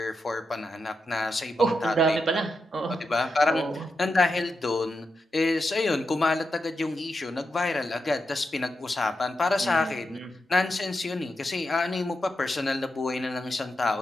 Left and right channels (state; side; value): normal; both; correlation 0.87